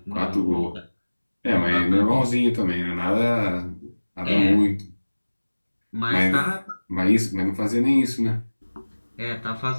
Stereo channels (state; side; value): inverted; both; correlation -1.00